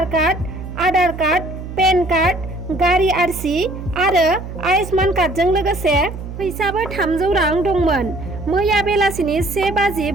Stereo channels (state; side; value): noise; right; hum, 10 dB below the sound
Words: card, Aadhaar card, PAN card, गारि आरसि आरो आयुष्मान कार्डजों लोगोसे फैसाबो 300 रां दंमोन। मैया बेलासिनि